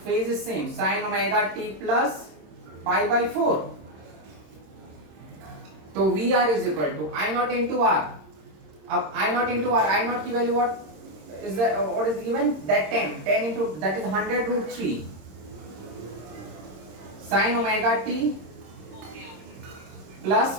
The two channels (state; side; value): late; left; 26 ms